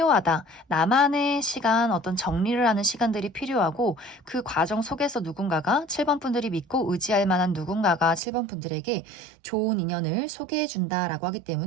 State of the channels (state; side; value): drops out; left; at 8.2 s